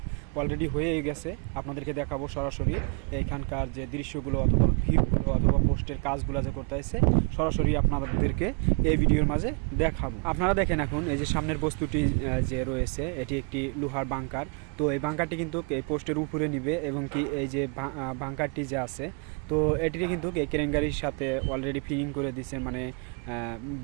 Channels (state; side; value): quieter; left; 35.2 dB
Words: অলরেডি হয়ে গেছে। আপনাদেরকে দেখাবো সরাসরি এইখানকার যে দৃশ্যগুলো অথবা ভিউগুলো অথবা পোস্টের কাজগুলো যে করতেছে, সরাসরি আপনাদেরকে এই ভিডিওর মাঝে দেখাবো। আপনারা দেখেন এখন এই যে সামনের বস্তুটি যে রয়েছে, এটি একটি লোহার বাংকার। তো এই বাংকারটি কিন্তু এই পোস্টের উপরে নিবে, এবং কি এই যে বাংকারটি যে আছে, তো এটিকে কিন্তু এই ক্রেন গাড়ির সাথে অলরেডি ফিটিং করে দিছে, মানে